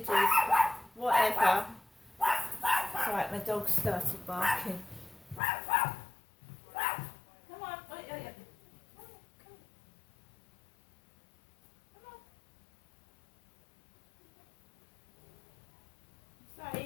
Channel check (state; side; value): drops out; right; at 5.4 s